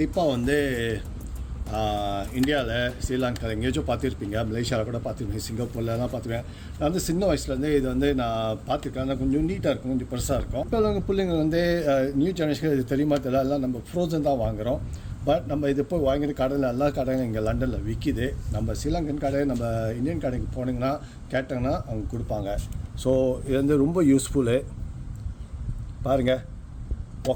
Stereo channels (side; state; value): both; identical; correlation 1.00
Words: வந்து இந்தியாவில், ஸ்ரீலங்கா எங்கேயாச்சும் பார்த்துருப்பீங்க, மலேசியாவில் கூட பார்த்துருப்பீங்க, சிங்கப்பூர்லாம் பார்த்துருவேன். நான் வந்து சின்ன வயசுலேருந்து இது வந்து நான் பார்த்துருக்கேன். கொஞ்சம் நீட்டாக இருக்கும், கொஞ்சம் பெருசாக இருக்கும். இப்போ அவங்க பிள்ளைங்க வந்து நியூ ஜெனரேஷன் இது தெரியுமா தெரியல, எல்லாம் நம்ம ஃப்ரோசன் தான் வாங்குகிறோம். பட் நம்ம இது போய் வாங்கிற கடையில் எல்லா கடையும் இங்கே லண்டனில் விற்கிது. நம்ம ஸ்ரீலங்கன் கடை, நம்ம இந்தியன் கடைக்கு போனீங்கன்னா கேட்டாங்கன்னா அவங்க கொடுப்பாங்க. ஸோ இது வந்து ரொம்ப யூஸ்ஃபுல்லு. பாருங்கள்,